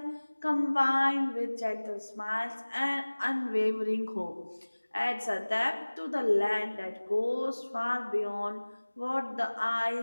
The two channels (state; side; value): inverted; both; correlation -1.00